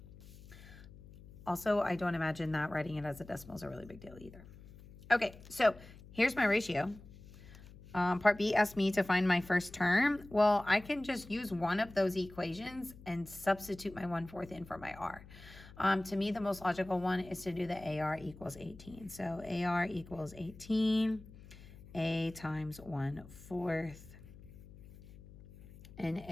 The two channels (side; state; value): left; noise; hum, 19 dB below the sound